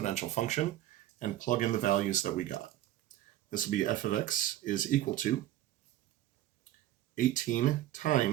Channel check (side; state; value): left; quieter; 13.8 dB